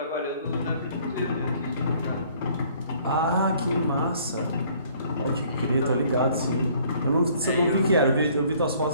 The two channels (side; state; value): both; inverted; correlation -0.58